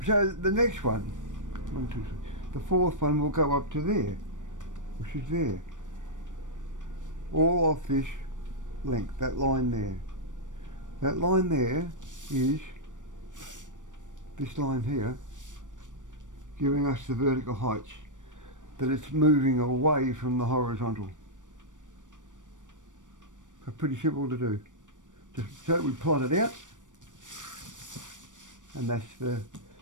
so the next one, 1, 2, 3, the fourth one will go up to there, which is there. All off this length, that line there. That line there is this line here, giving us the vertical heights, that it's moving away from the horizontal. So pretty simple to do. Just so we plot it out, and that's the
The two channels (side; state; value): left; late; 0.87 ms